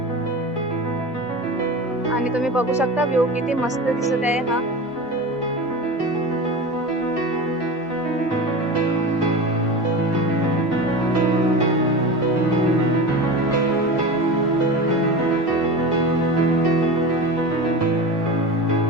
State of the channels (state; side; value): normal; both; correlation 0.28